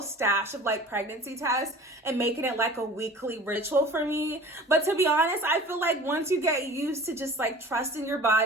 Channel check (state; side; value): normal; both; correlation 0.42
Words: stash of like pregnancy tests and making it like a weekly ritual for me. But to be honest, I feel like once you get used to just like trusting your